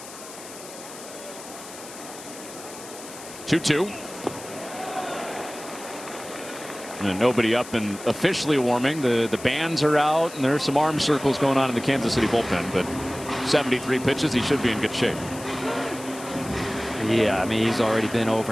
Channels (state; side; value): noise; left; hiss, 15 dB below the sound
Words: 2-2. And nobody up and officially warming. The bands are out, and there's some arm circles going on in the Kansas City bullpen. But 73 pitches, he should be in good shape. Yeah, I mean, he's already been